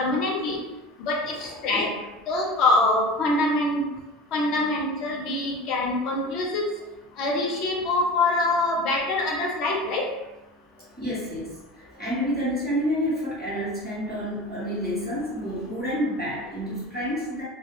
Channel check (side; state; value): both; normal; correlation 0.35